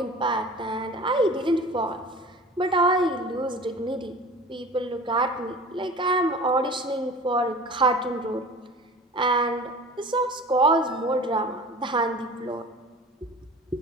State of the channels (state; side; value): normal; both; correlation 0.40